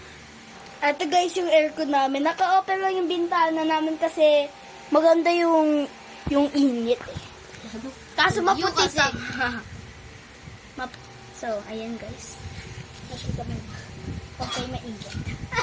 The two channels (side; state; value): both; identical; correlation 1.00